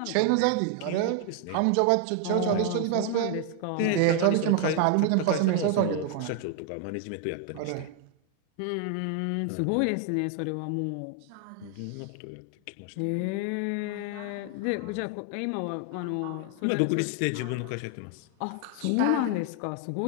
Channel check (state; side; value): different; both; correlation 0.00